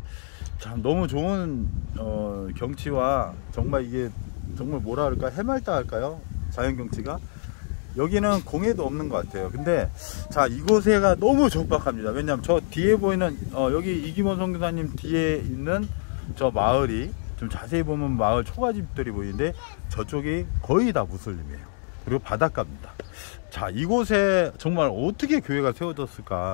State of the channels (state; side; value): silent; right; 61 dB below the other